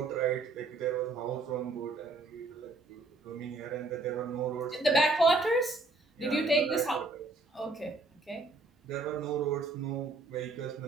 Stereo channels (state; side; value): quieter; left; 3.3 dB